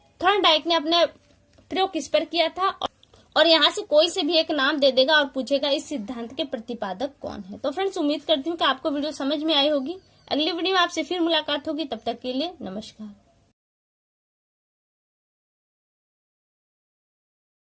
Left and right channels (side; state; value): both; identical; correlation 1.00